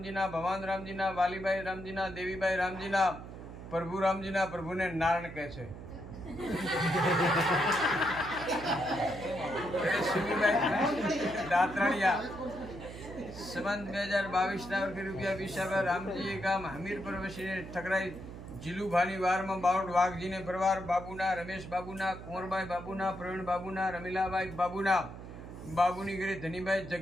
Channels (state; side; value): noise; right; hum, 12 dB below the sound